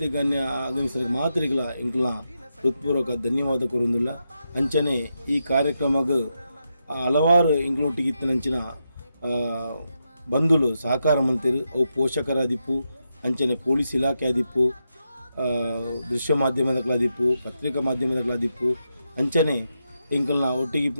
ಗಣ್ಯ ಆಗಮಿಸಿದ ಮಾತ್ರಿಗಳ ಇಂಕ್ಲ ಹೃತ್ಪೂರ್ವಕ ಧನ್ಯವಾದ ಕೊರುವುದಿಲ್ಲ. ಅಂಚನೆ ಈ ಕಾರ್ಯಕ್ರಮಕ್ಕೆ ಹಲವಾರು ಇಂಕ್ಲೊಟ್ಟಿಗಿತ್ತಿನಂಚಿನ ಬಂಧುಗಳು ಸಹಕಾರ ಮಂತ್ರಿ ಅವು ಪೋಷಕರಾದಿಪ್ಪು, ಅಂಚನೆ ಪೊಲೀಸ್ ಇಲಾಖೆ ಆದಿಪ್ಪು, ದೃಶ್ಯ ಮಾಧ್ಯಮದಗಳಾದಿಪ್ಪು, ಪತ್ರಿಕಾ ಮಾಧ್ಯಮದಗಳಾದಿಪ್ಪು, ಅಂಚನೆ ಇಂಕಲ್ನ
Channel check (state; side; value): inverted; both; correlation -0.85